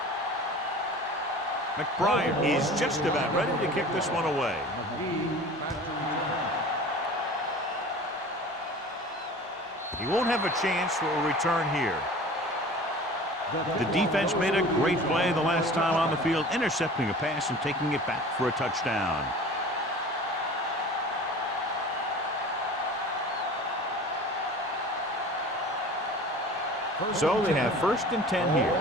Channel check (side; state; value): both; normal; correlation 0.40